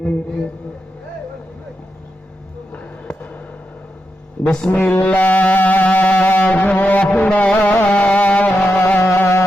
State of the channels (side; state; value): both; normal; correlation 0.86